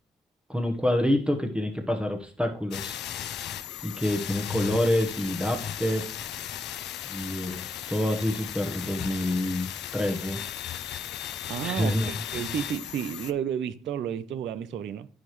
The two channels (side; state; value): both; normal; correlation 0.79